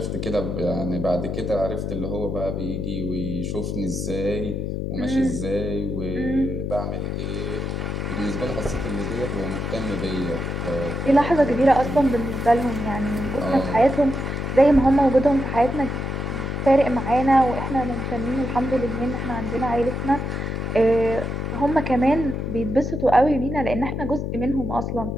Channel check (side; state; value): left; noise; hum, 3 dB below the sound